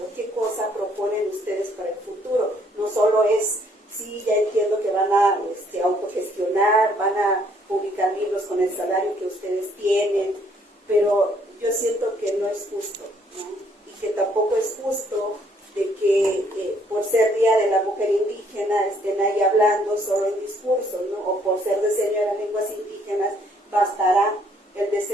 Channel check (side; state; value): both; normal; correlation 0.66